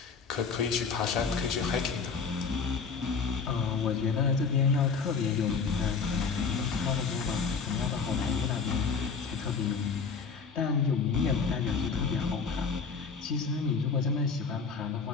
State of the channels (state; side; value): quieter; right; 5.3 dB